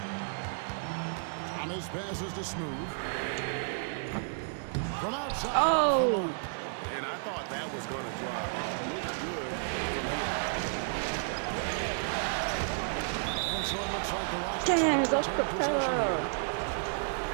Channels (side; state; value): left; silent; digital silence